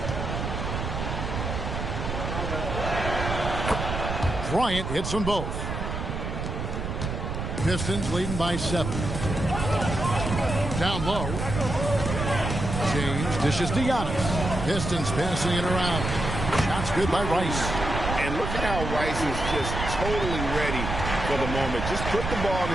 Bryant hits them both. Pistons leading by 7. Down low. James dishes to Giannis. Pistons passing it around. Shots good by Rice. And look at how Rice is just totally ready for the moment. Just put the ball in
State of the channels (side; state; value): right; noise; rumble, 4 dB below the sound